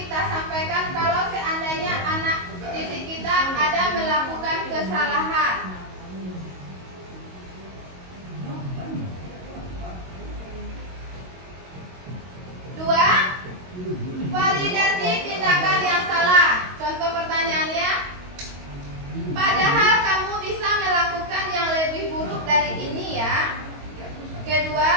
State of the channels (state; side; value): late; left; 22 ms